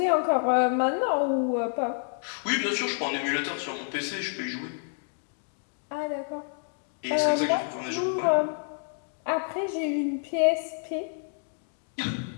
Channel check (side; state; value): right; silent; 59 dB below the other